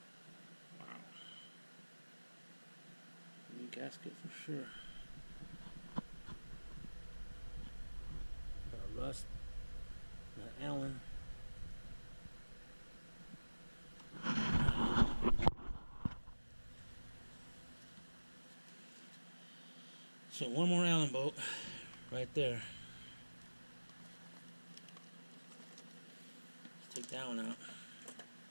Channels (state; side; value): inverted; both; correlation -1.00